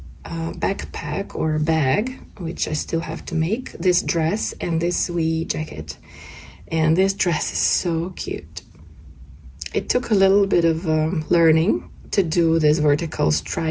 backpack or bag, which I still have to make, this dress and this wee jacket. And this dress is so cute. It took a little bit of learning to do these vertical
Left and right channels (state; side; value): identical; both; correlation 1.00